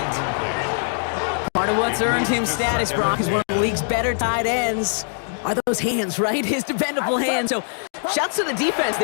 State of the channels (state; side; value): silent; right; digital silence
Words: Part of what's earned him status, Brock, is one of the league's better tight ends. Are those hands, right? His dependable hands. So, shouts to the defense